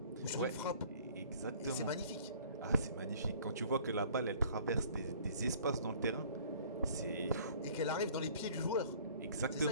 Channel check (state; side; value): inverted; both; correlation -0.52